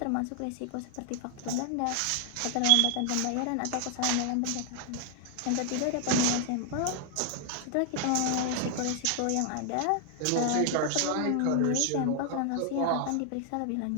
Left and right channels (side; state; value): both; different; correlation 0.00